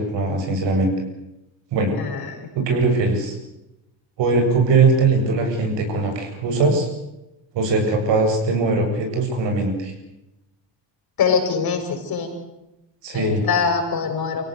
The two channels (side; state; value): both; normal; correlation 0.08